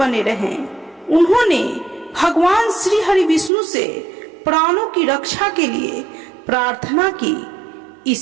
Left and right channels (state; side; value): drops out; left; at 3.5 s